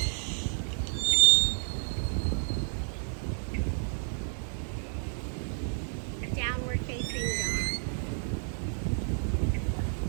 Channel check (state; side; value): silent; left; digital silence